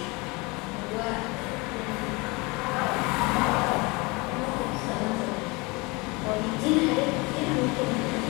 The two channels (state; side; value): quieter; right; 26.1 dB